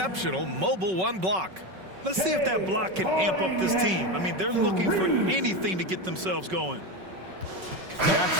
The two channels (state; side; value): late; left; 5.3 ms